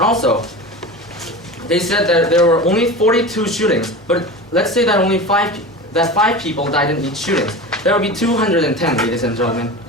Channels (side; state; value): both; normal; correlation 0.31